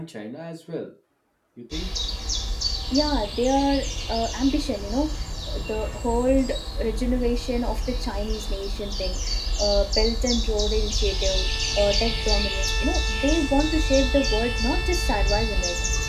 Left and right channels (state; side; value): identical; both; correlation 1.00